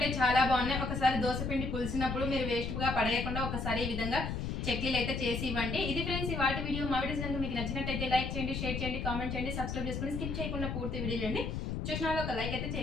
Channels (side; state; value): left; noise; rumble, 3 dB below the sound